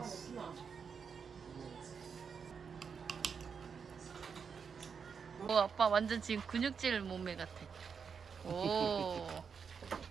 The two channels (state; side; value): quieter; left; 6.2 dB